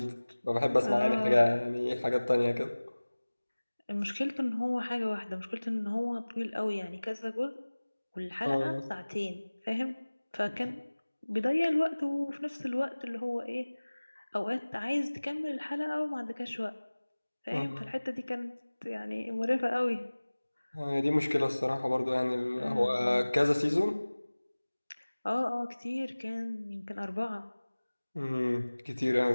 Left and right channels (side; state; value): both; inverted; correlation -1.00